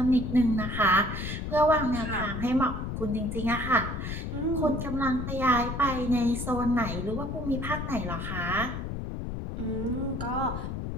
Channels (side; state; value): left; noise; rumble, 5 dB below the sound